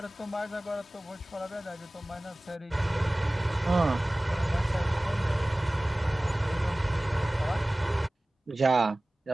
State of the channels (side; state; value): both; normal; correlation 0.98